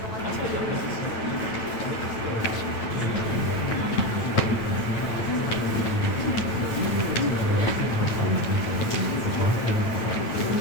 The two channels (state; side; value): late; right; 9.0 ms